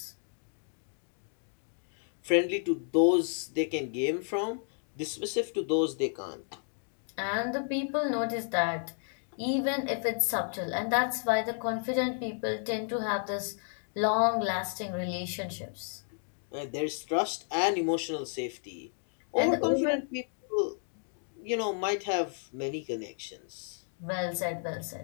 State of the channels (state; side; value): silent; right; 56 dB below the other